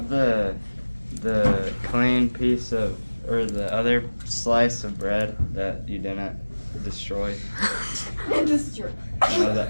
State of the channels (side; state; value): both; inverted; correlation -1.00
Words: the clean piece of, or the other slice of bread that you didn't destroy. No, the